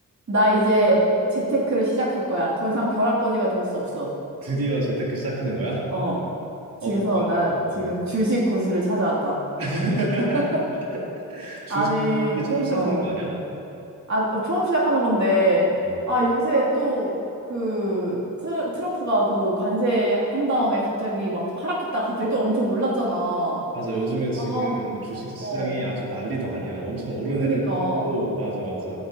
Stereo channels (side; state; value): both; normal; correlation 0.07